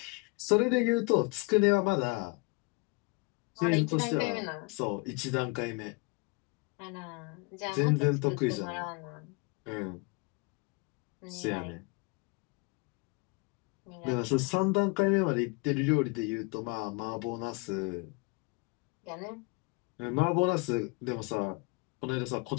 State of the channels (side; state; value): right; quieter; 29.1 dB